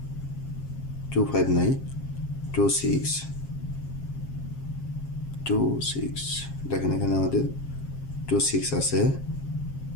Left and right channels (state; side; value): late; right; 7.4 ms